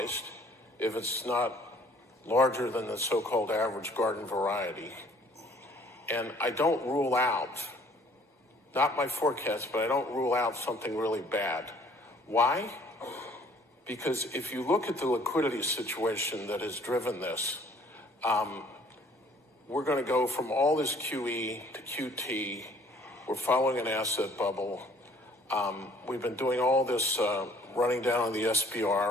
if it's not larger than the so-called average garden variety. And I don't rule out, not my forecast, but I don't rule out something really bad. Why? Because if you look at the liquidity situation that has driven this, we're going to go from all this QE to QT. We're following an asset bubble. We've been doing all this running down on the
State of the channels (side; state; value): both; normal; correlation 0.58